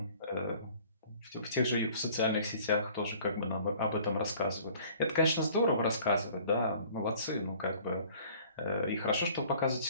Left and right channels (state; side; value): inverted; both; correlation -0.51